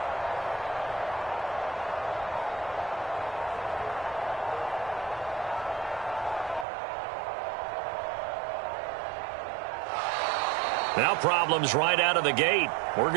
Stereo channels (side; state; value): left; drops out; at 6.7 s